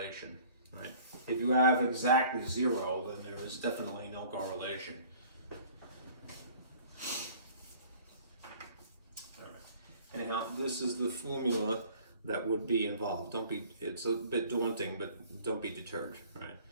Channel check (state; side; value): inverted; both; correlation -0.51